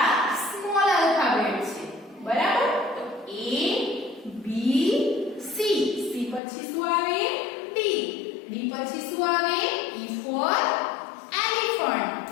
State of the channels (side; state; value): right; drops out; at 6.4 s